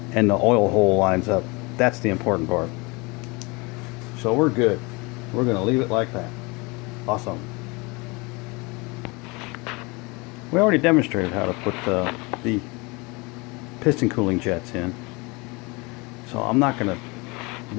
And the oil hole lines up. That's the important part. So we're good. We're going to leave it like that. Awesome. We already demonstrated how to put the piston cooling jets in. So I'm not going to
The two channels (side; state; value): right; quieter; 26.8 dB